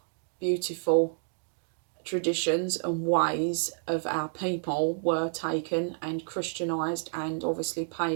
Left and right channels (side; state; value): left; silent; digital silence